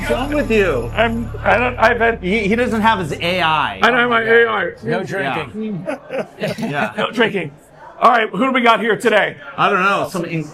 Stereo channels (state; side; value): identical; both; correlation 1.00